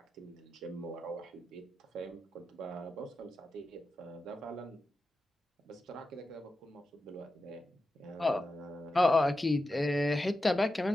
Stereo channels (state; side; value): normal; both; correlation 0.90